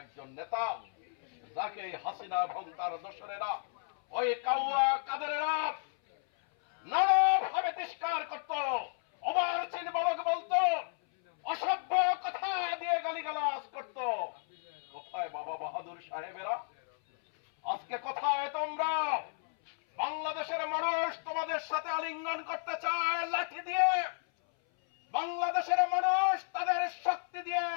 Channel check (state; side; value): silent; right; 56 dB below the other